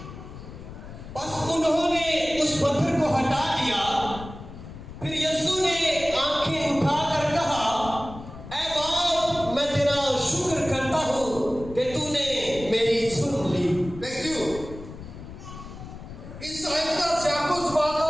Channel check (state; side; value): noise; left; rumble, 13 dB below the sound